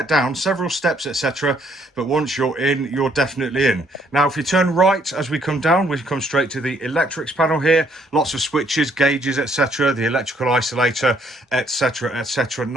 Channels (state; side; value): normal; both; correlation 0.67